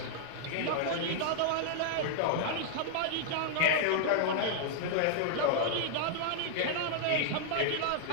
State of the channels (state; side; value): different; both; correlation -0.01